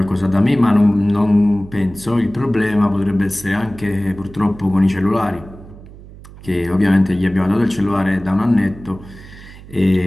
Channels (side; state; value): right; noise; hum, 18 dB below the sound